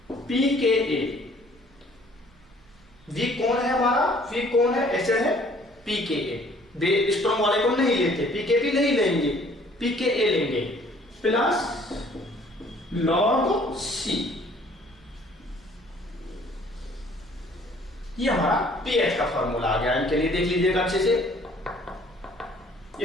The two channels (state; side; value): noise; right; rumble, 29 dB below the sound